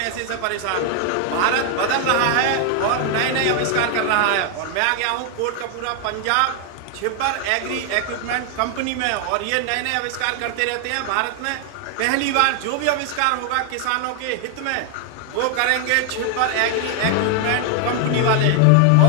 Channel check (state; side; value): different; both; correlation 0.00